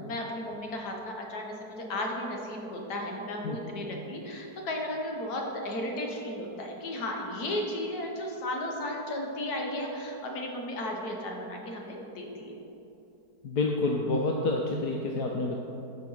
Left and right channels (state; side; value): late; right; 4.5 ms